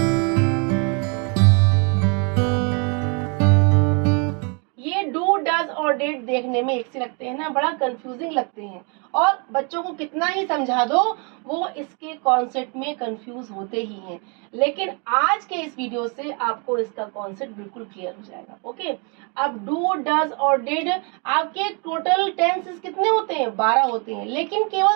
ये डू डज और डिड देखने में एक से लगते हैं ना, बड़ा कंफ्यूजिंग लगते हैं, और बच्चों को कितना ही समझा दो वो इसके कॉन्सेप्ट में कंफ्यूज होते ही हैं। लेकिन आज के इस वीडियो से आपको इसका कॉन्सेप्ट बिल्कुल क्लियर हो जाएगा। ओके, अब डू डज और डिड आपके टोटल टेंसेस कितने होते हैं? 12 होते हैं, लेकिन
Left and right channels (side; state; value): left; quieter; 35.1 dB